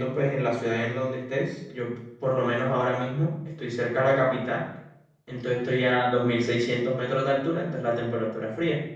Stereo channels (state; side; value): identical; both; correlation 1.00